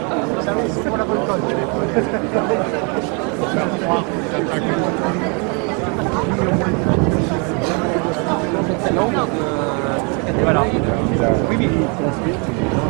Voilà. Oui, oui.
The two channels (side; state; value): left; quieter; 34.6 dB